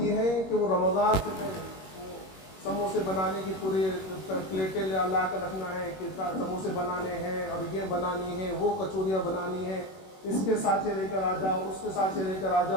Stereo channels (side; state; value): right; late; 21 ms